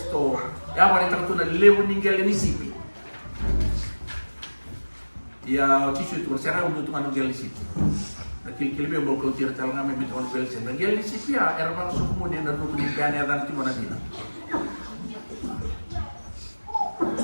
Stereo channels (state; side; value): inverted; both; correlation -1.00